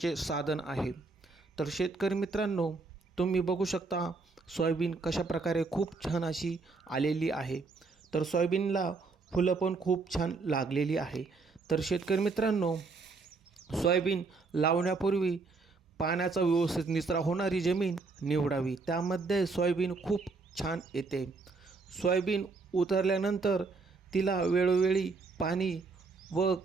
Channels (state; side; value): quieter; left; 4.1 dB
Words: साधन आहे। तर शेतकरी मित्रांनो, तुम्ही बघू शकता सोयाबीन कशा प्रकारे खूप छान अशी आलेली आहे। तर सोयाबीनला फुलं पण खूप छान लागलेली आहे। तर शेतकरी मित्रांनो, सोयाबीन लावण्यापूर्वी पाण्याचा व्यवस्थित निचरा होणारी जमीन निवडावी, त्यामध्ये सोयाबीन खूप छान येते। सोयाबीन उतरल्यानंतर तिला वेळोवेळी पाणी व